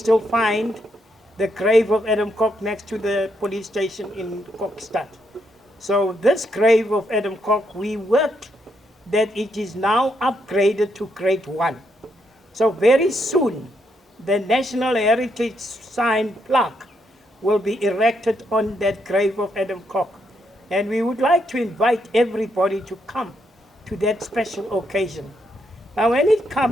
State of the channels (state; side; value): normal; both; correlation 0.77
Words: find the grave of Adam Kok next to the police station in Kokstad. So this grave of Adam Kok, we worked that it is now upgraded to grade 1. So very soon, the National Heritage Sign plaque will be erected on that grave of Adam Kok. And we would like to invite everybody to come to that special occasion. Now, when it